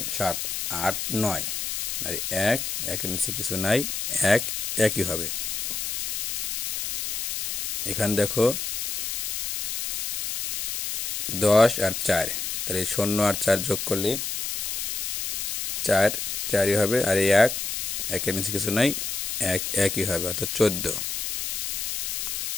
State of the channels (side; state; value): left; noise; hiss, 2 dB below the sound